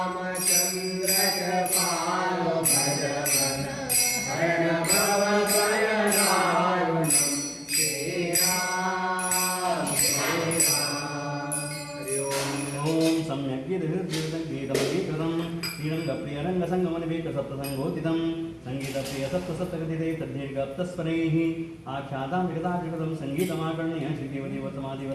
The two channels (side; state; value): both; identical; correlation 1.00